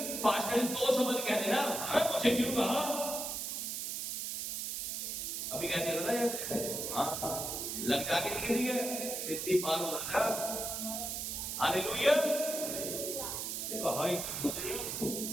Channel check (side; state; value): right; noise; hiss, 3 dB below the sound